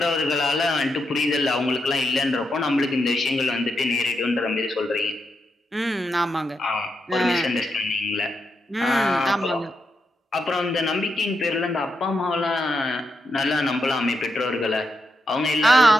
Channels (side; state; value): both; normal; correlation 0.84